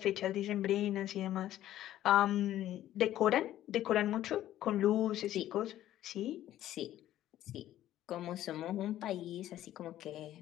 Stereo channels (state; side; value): quieter; right; 13.0 dB